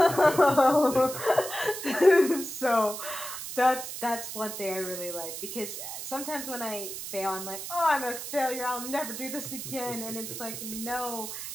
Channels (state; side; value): noise; right; hiss, 8 dB below the sound